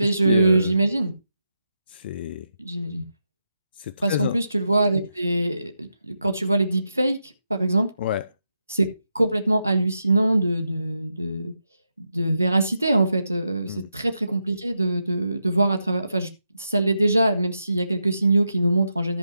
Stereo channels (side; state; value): both; inverted; correlation -0.85